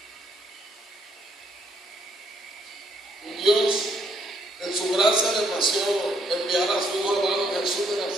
Un Dios en su gracia le plació enviar a su Hijo amado Jesús de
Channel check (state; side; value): normal; both; correlation 0.70